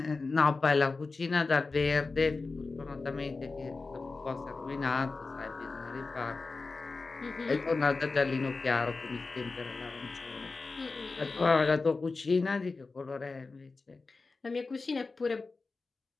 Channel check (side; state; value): right; quieter; 3.9 dB